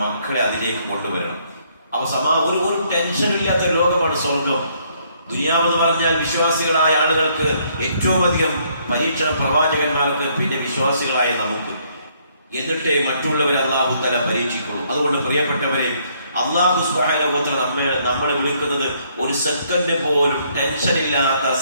മക്കളെ അതിലേക്ക് കൊണ്ടുവരണം. ഒരു ടെൻഷനും ഇല്ലാത്ത ലോകമാണ് സ്വർഗം. ദുനിയാവെന്ന് പറഞ്ഞാൽ വിശ്വാസികളായ ആളുകൾക്ക് ഏറ്റവും അധികം പരീക്ഷണം പ്രവാചകന്മാർക്ക്, പിന്നെ വിശ്വാസികളായ നമുക്ക്. എന്നിട്ടേ മറ്റുള്ളവരെ അല്ലാഹു തആല പരീക്ഷിക്കുള്ളൂ. അതുകൊണ്ട് പ്രിയപ്പെട്ടവരെ, അല്ലാഹു സുബ്ഹാനഹു വ തആല നമ്മളെ വിളിക്കുന്നത് ഒരു സെക്കൻഡ് പോലും ടെൻഷൻ ഇല്ലാത്ത,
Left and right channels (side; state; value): both; inverted; correlation -0.68